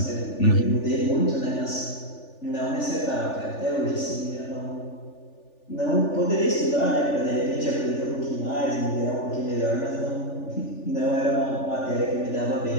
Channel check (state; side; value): late; right; 3.4 ms